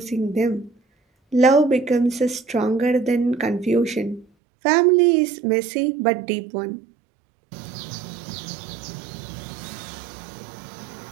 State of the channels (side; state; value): left; drops out; at 4.2 s